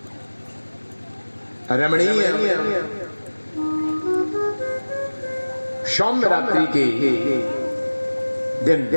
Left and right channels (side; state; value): both; inverted; correlation -1.00